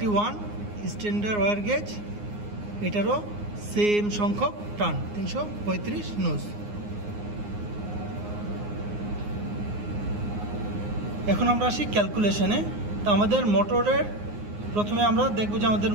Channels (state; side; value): late; left; 9.6 ms